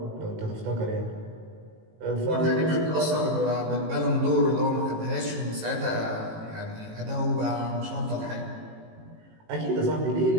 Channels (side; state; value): left; late; 18 ms